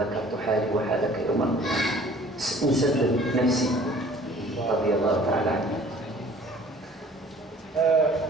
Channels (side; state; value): both; normal; correlation 0.52